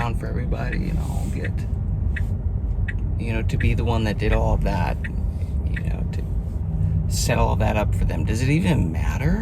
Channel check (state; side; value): identical; both; correlation 1.00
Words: for everybody, I'll get, to be the one that did all of that, to set all of that up for them. Does it even